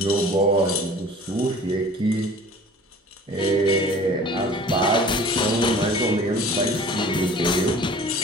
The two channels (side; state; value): both; normal; correlation 0.46